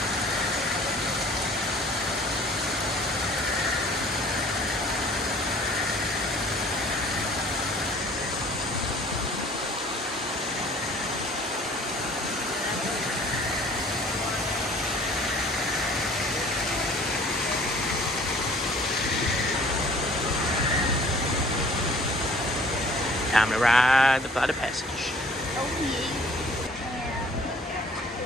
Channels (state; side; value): normal; both; correlation 0.52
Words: Time to ride the flight of passage.